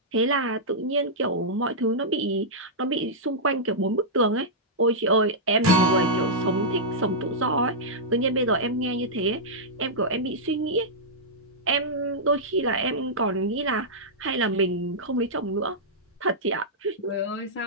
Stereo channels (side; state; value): both; normal; correlation -0.10